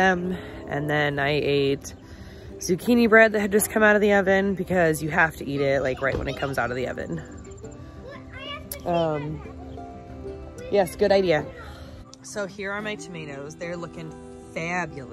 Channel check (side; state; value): both; identical; correlation 1.00